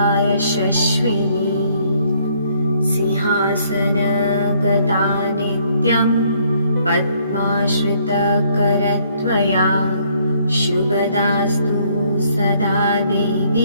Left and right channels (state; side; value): inverted; both; correlation -0.66